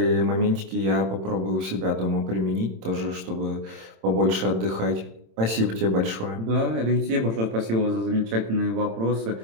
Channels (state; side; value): late; left; 27 ms